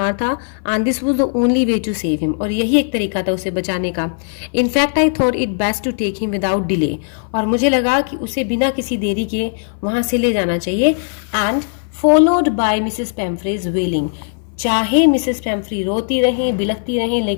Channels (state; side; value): silent; right; 58 dB below the other